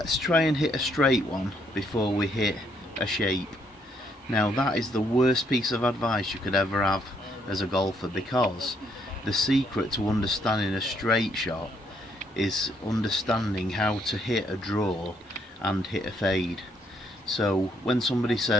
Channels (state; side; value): normal; both; correlation 0.71